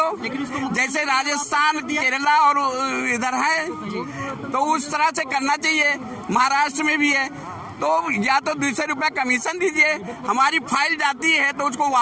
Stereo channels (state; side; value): identical; both; correlation 1.00